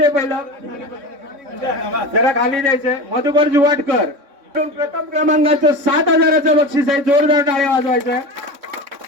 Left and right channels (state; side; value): late; left; 3.6 ms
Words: पहिलं जरा खाली द्यायचंय. मधुकर जुवाटकर प्रथम क्रमांकाचं 7,000चं बक्षीस आहे. जोरदार टाळ्या वाजवायचं.